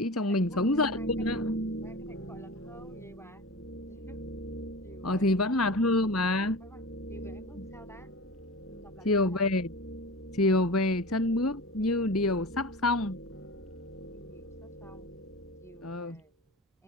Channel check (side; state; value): both; normal; correlation 0.32